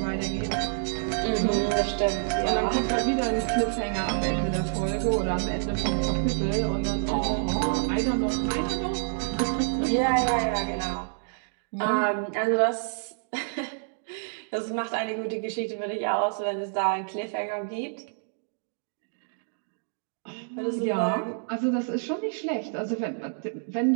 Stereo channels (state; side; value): silent; left; digital silence